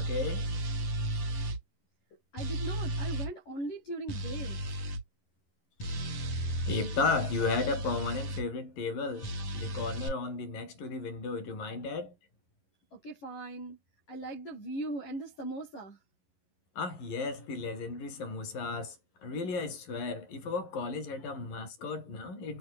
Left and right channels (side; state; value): right; late; 11 ms